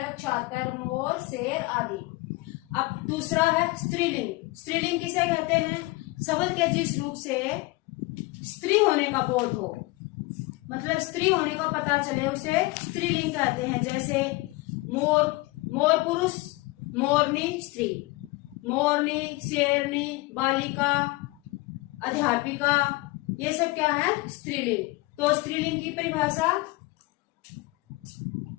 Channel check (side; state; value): right; quieter; 22.1 dB